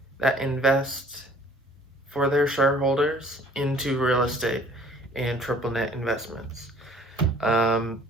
that invest for their shareholders into real estate and NNN investments.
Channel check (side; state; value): both; normal; correlation 0.55